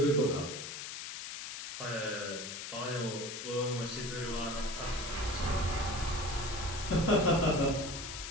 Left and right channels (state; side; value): noise; left; hiss, 7 dB below the sound